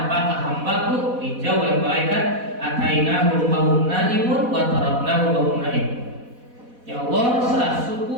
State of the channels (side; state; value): left; late; 4.1 ms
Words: apakah hambaku? Dijawab oleh malaikat, atainahum wa hum naimun wa taraknahum wa hum naimun. Ya Allah, saat